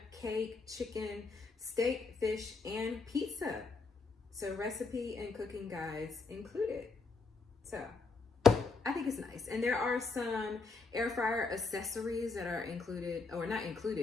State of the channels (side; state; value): right; quieter; 4.3 dB